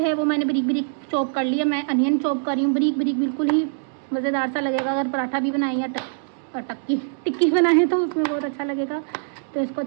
है वो मैंने बारीक बारीक चॉप कर लिया। मैं अनियन चॉप कर रही हूँ बारीक बारीक, बिल्कुल ही मज़ेदार सा लगेगा अगर पराठा भी बनाए या टिक्की बनाए तो उसमें बहुत अच्छा लगेगा। तो इसको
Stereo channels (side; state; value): left; silent; digital silence